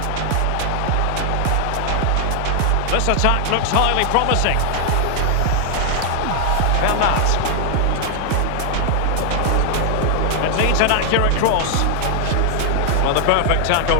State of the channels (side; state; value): both; different; correlation 0.00